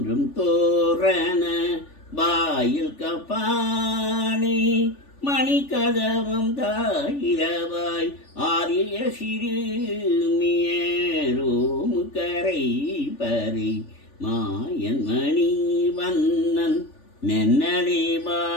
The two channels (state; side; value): late; right; 3.4 ms